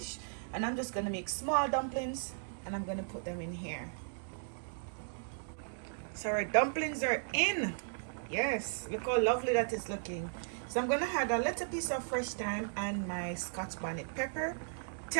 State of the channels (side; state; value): left; silent; digital silence